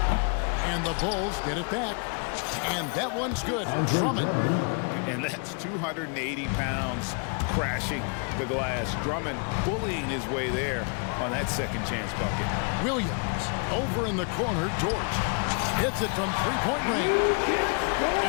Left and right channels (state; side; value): quieter; right; 38.4 dB